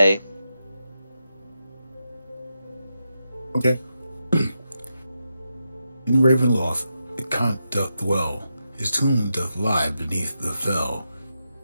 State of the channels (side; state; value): both; inverted; correlation -0.86